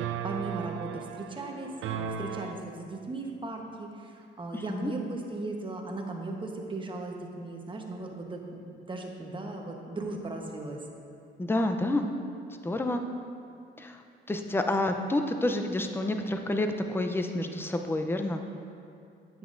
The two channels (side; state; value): both; normal; correlation 0.70